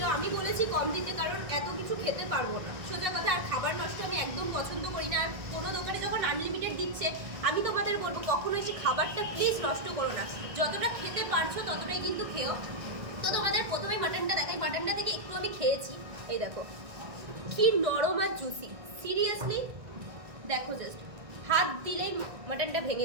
আমি বলেছি কম দিতে, কারণ এত কিছু খেতে পারবো না, সোজা কথা। আর খাবার নষ্ট আমি একদম পছন্দ করি না। আর কোনো দোকানে যখন আনলিমিটেড দিচ্ছে, আমি তোমাদের বলবো কখনো এসে খাবারটা প্লিজ নষ্ট করো না, যতটা খেতে পারছো ততটাই কিন্তু খেও। তো তোমাদের প্রথমে মাটনটা দেখাই, মাটনটা থেকে একটু আমি খেয়েছি, এই দেখো কি নরম আর জুসি, সিরিয়াসলি দেখো, জাস্ট হাত দিলেই মাটনটা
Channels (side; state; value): left; late; 1.6 ms